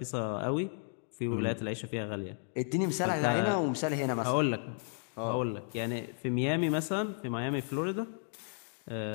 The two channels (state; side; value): silent; right; 55 dB below the other